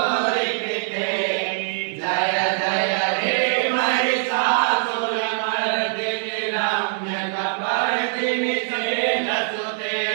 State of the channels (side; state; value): left; silent; digital silence